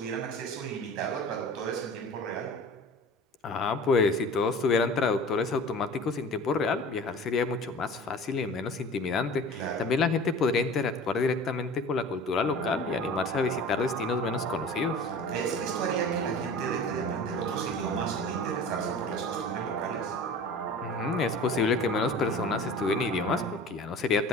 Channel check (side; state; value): both; normal; correlation 0.40